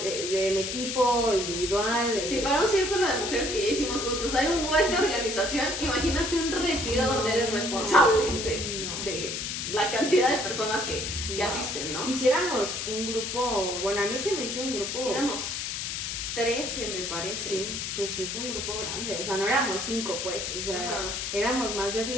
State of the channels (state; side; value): noise; left; hiss, 3 dB below the sound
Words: del equipo individual. Sí, para un círculo de mujeres que ya hicimos juntos hay un buen de organización, imagínate un retiro donde eres responsable de la cantidad de personas que asisten, ¿no? Hiciéramos un grupo, bueno, a mí se me hizo un grupo. Éramos 13, me parece. Sí, pues sí, fue un grupo grande, o sea, no éramos 5, pues, o sea, éramos más de